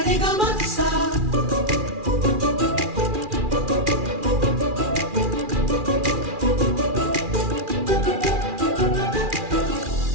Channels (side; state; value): left; late; 2.4 ms